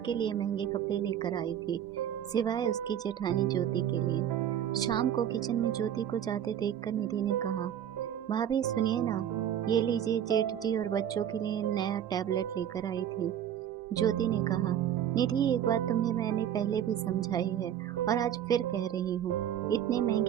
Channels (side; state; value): left; quieter; 10.0 dB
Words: लिए महंगे कपड़े लेकर आई थी, सिवाय उसकी जेठानी ज्योति के लिए। शाम को किचन में ज्योति को जाते देखकर निधि ने कहा, भाभी सुनिए ना, ये लीजिए, जेठ जी और बच्चों के लिए नया टैबलेट लेकर आई थी। ज्योति ने कहा, निधि एक बात तुम्हें मैंने पहले भी समझाई है और आज फिर कह रही हूँ, इतने